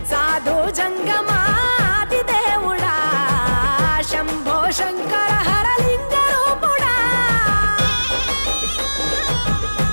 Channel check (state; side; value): inverted; both; correlation -1.00